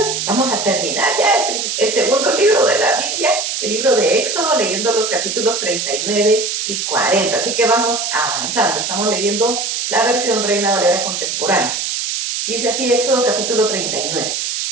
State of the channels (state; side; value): noise; right; hiss, 2 dB below the sound